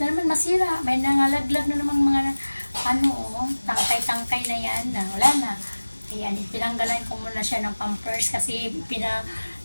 naman masira. May nangalaglag na naman mga tangkay-tangkay na yan. Wala na. Ayan, tinanggalan ko muna siya ng pampers kasi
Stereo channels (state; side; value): inverted; both; correlation -1.00